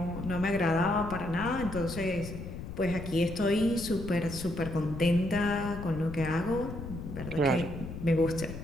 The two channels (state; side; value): noise; left; rumble, 9 dB below the sound